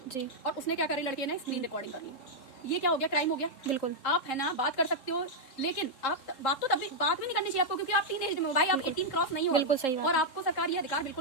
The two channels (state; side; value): late; right; 3.8 ms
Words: और उसने क्या करी, लड़के ने स्क्रीन रिकॉर्डिंग कर ली। ये क्या हो गया, क्राइम हो गया। बिल्कुल, आप है ना बात कर सकते हो, लेकिन आप बात तो तभी बात भी नहीं करनी चाहिए आपको, क्योंकि आप टीनेज में हो भाई, आप 18 क्रॉस नहीं हो। बिल्कुल सही बात। और आपको सरकार ये अधिकार